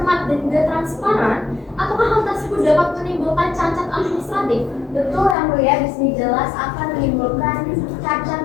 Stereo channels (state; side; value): drops out; right; at 5.4 s